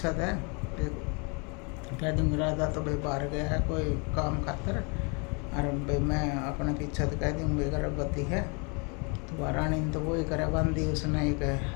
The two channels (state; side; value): quieter; right; 33.3 dB